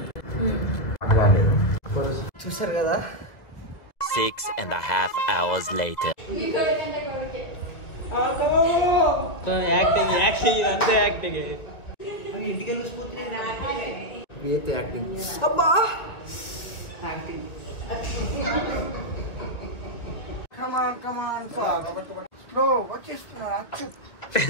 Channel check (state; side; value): late; right; 1.8 ms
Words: చూసారు కదా, 6.5 hours later. అబ్బా కమాన్ స్లో వచ్చేస్తున్నాడు అచ్యుత్.